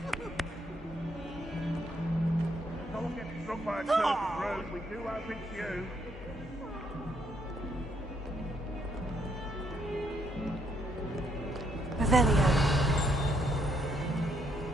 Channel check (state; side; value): normal; both; correlation 0.73